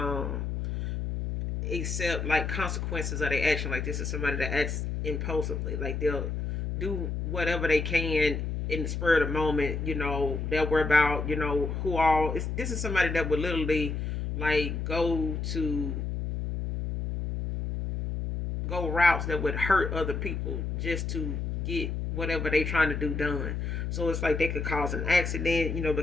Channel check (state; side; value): noise; left; hum, 2 dB below the sound